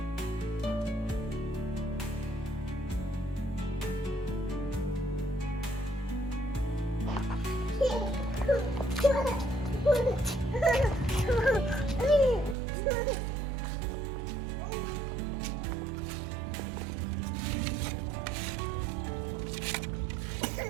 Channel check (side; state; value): left; drops out; at 12.6 s